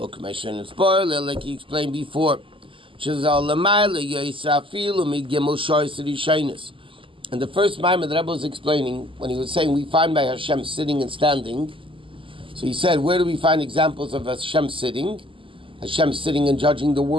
he explained before. And the first Maamar the Rebbe was explaining, when he was saying we find by Hashem sitting and standing, so he said, where do we find examples of Hashem sitting? Hashem sitting and judging the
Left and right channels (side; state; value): left; late; 0.25 ms